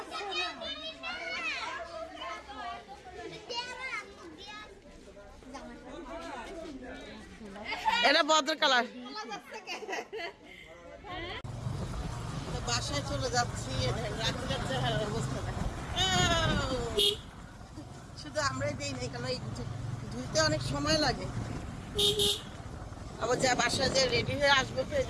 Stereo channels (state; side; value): identical; both; correlation 1.00